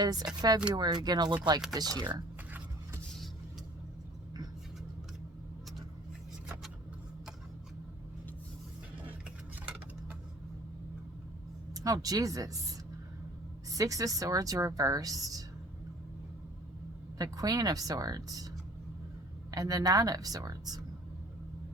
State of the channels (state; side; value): normal; both; correlation 0.50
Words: February gonna look like this year? Oh, Jesus. Six of Swords reversed. The Queen of Swords. And the Nine of Swords.